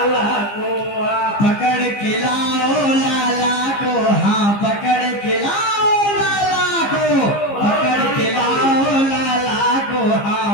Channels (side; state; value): right; late; 15 ms